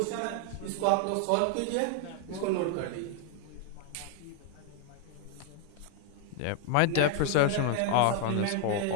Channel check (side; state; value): both; different; correlation 0.00